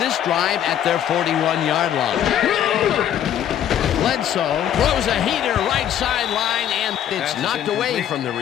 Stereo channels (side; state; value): right; quieter; 10.3 dB